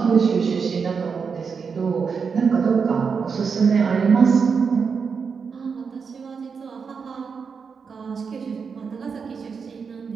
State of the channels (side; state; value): left; quieter; 5.7 dB